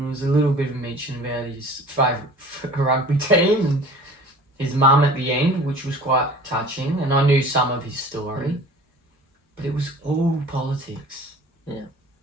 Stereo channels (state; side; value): normal; both; correlation 0.44